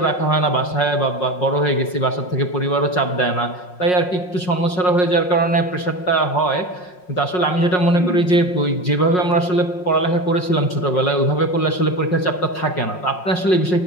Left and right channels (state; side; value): late; right; 5.5 ms